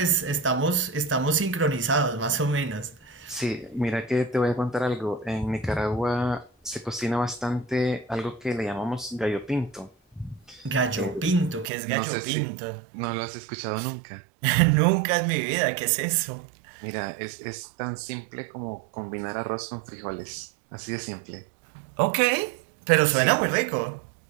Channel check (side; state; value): left; drops out; at 11.7 s